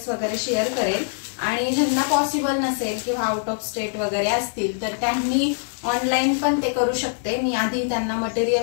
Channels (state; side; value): silent; right; 63 dB below the other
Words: वगैरे शेअर करेल। आणि ज्यांना पॉसिबल नसेल किंवा आउट ऑफ स्टेट वगैरे असतील तर त्यांनी ऑनलाइन पण ते करू शकते। मी आधी त्यांना